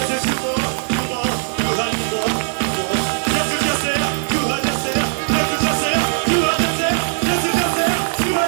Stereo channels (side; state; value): left; silent; digital silence